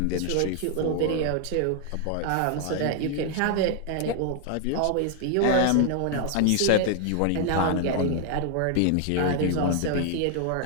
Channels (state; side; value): different; both; correlation 0.00